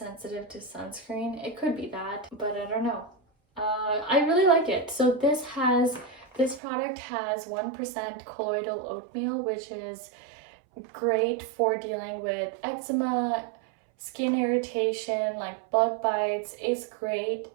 to sunscreen. It could be that, but I don't know. I really like it. So this product has 1% colloidal oatmeal, which is great for dealing with eczema, skin irritation, like bug bites. It's great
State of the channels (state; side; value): drops out; left; at 6.6 s